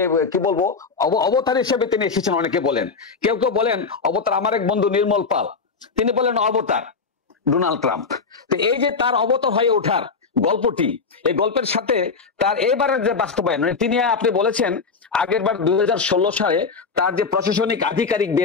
কি বলবো অবতার হিসেবে তিনি এসেছেন। অনেকে বলেন, কেউ কেউ বলেন অবতার। আমার এক বন্ধু নির্মল পাল, তিনি বলেন অবতার ডোনাল্ড ট্রাম্প। তো এই যে তার অবতার হয়ে ওঠার গল্পটি, এই গল্পের সাথে তার এবারের যে বাস্তবায়ন, মানে তিনি আপনি বলেছেন আগের বার 2016 সালে তার যে প্রশাসনিক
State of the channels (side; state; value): right; quieter; 4.9 dB